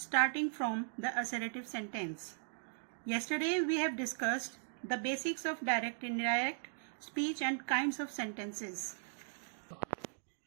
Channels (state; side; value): silent; left; digital silence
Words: from the assertive sentence. Yesterday we have discussed the basics of direct, indirect speech and kinds of sentences,